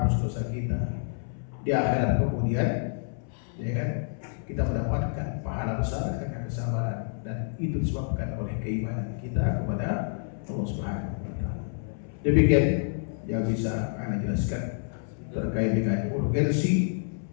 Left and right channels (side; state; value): right; silent; 59 dB below the other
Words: dosa kita, di akhirat kemudian, ya kan, kita mendapatkan pahala besar karena kesabaran, dan itu disebabkan oleh keimanan kita kepada Allah Subhanahu wa ta'ala. Demikian yang bisa Anda jelaskan terkait dengan urgensi,